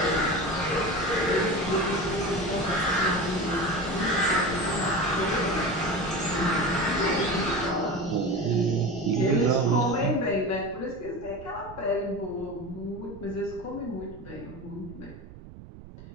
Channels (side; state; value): right; noise; rumble, 17 dB below the sound